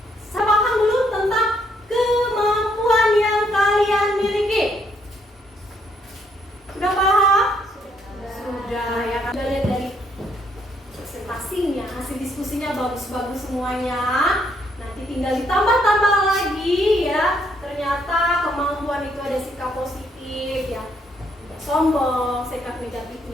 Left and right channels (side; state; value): both; normal; correlation 0.71